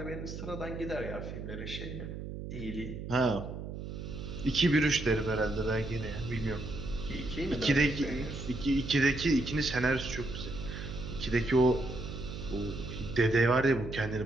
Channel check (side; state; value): right; noise; hum, 8 dB below the sound